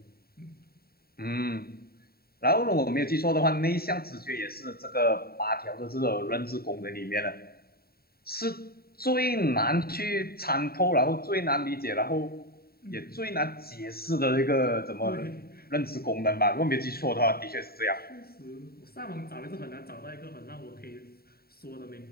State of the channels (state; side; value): late; right; 0.45 ms